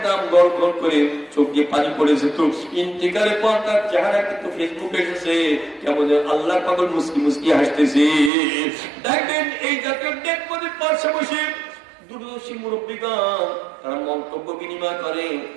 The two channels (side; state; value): left; drops out; at 8.3 s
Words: গড় গড় করে চোখ দিয়ে পানি পড়ে যেত। ইন্তিকালের পর তার চেহারা কিন্তু ফেসবুকে এসেছে, কেমন আল্লাহ পাগল মুস্কি মুস্কি হাসতেছে। দেখবেন এই জাতীয় দেখবেন পাশে বসে দূরদর্শী মুরব্বীগণ তারা মন্তব্য বিনিময় করে।